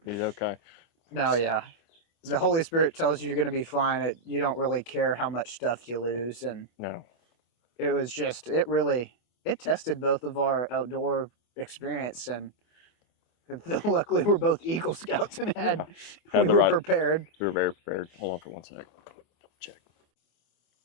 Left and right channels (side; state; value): right; late; 24 ms